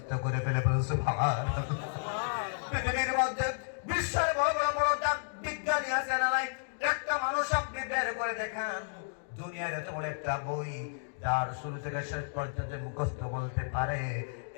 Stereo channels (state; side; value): silent; right; digital silence